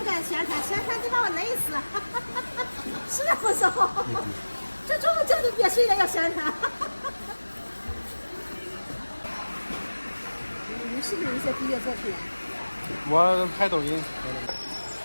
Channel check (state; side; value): inverted; both; correlation -1.00